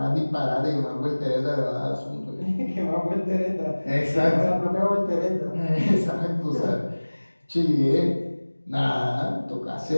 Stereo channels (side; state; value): both; inverted; correlation -1.00